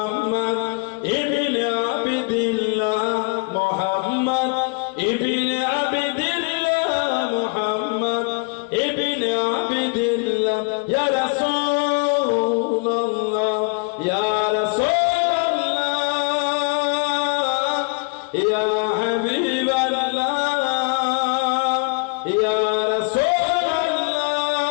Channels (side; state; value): right; quieter; 32.9 dB